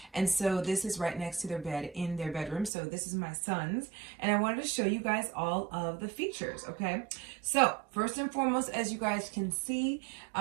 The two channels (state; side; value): drops out; left; at 2.7 s